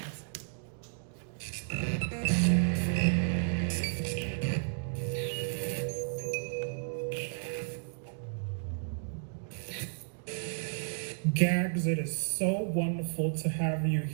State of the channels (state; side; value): silent; left; digital silence